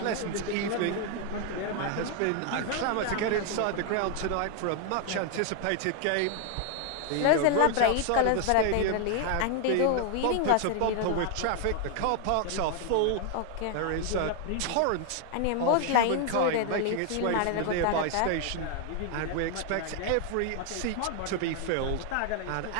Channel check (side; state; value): both; different; correlation 0.00